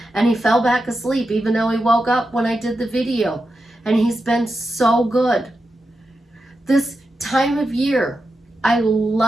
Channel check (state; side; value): normal; both; correlation 0.89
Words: and he fell back asleep even though he woke up when I did the video, and he's been so good. This time of year, I